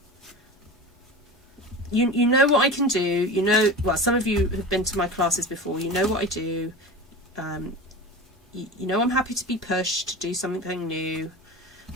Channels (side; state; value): both; normal; correlation 0.30